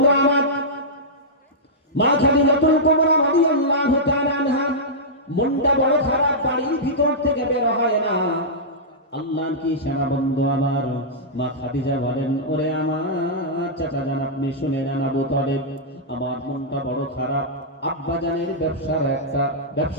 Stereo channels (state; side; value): normal; both; correlation -0.12